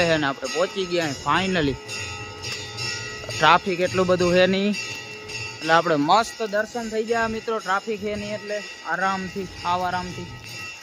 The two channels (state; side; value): identical; both; correlation 1.00